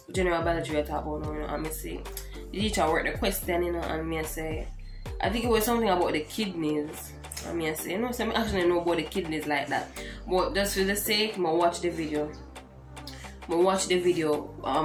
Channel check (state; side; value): identical; both; correlation 1.00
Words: general biology I talk about now, and I say the teacher worked the question, and me say I think it was something about the kidneys. And me say, so I actually know about the kidneys like that. But just for the sake, I watch the video.